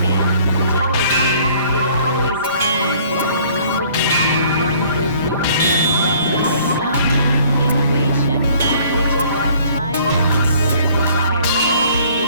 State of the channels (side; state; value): both; inverted; correlation -0.57